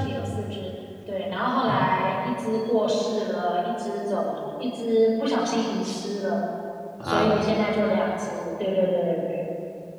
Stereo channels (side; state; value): both; identical; correlation 1.00